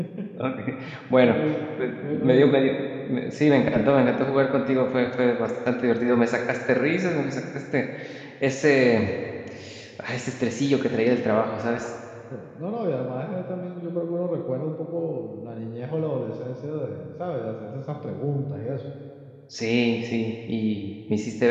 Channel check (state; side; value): identical; both; correlation 1.00